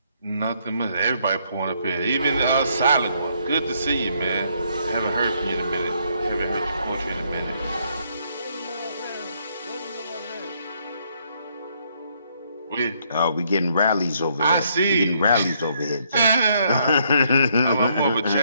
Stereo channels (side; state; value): both; inverted; correlation -0.71